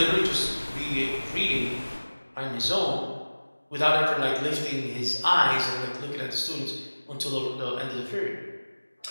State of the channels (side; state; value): both; inverted; correlation -1.00